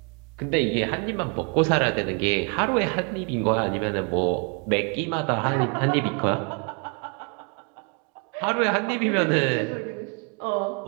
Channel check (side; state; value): left; quieter; 36.7 dB